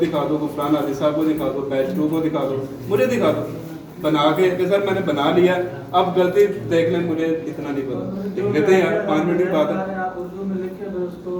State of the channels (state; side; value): identical; both; correlation 1.00